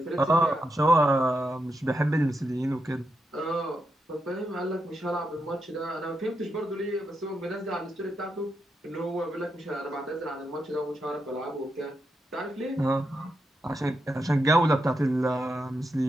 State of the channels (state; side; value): normal; both; correlation 0.84